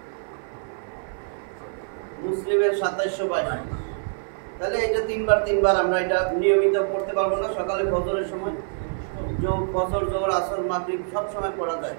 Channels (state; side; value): silent; left; 59 dB below the other